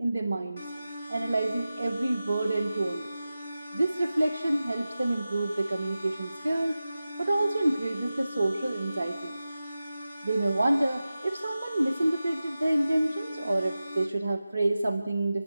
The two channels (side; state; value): both; inverted; correlation -0.95